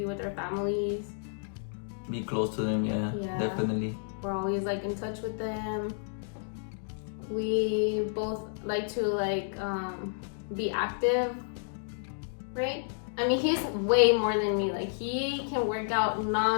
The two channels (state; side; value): silent; right; digital silence